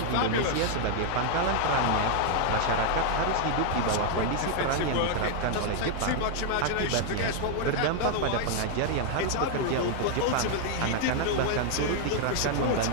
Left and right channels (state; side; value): different; both; correlation 0.00